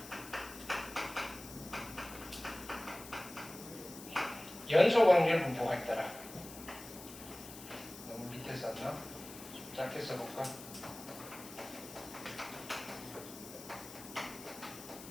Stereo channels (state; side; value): noise; left; hiss, 14 dB below the sound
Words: 연속 확률 분포가 있더라. 너무 밑에 썼나? 좀 짧게 써볼까?